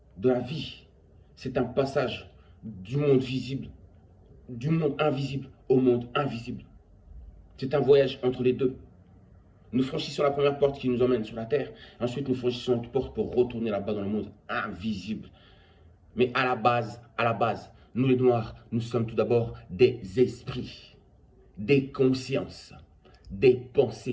de la vie, c'est un passage du monde visible, du monde invisible au monde invisible. C'est un voyage entre les deux. Nous franchissons la première porte qui nous emmène sur la terre. Ensuite, nous franchissons une porte pour retourner là-bas dans le monde invisible. Mais à la base, nous les Noirs, nous sommes tout d'abord des esprits, des consciences, des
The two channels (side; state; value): both; identical; correlation 1.00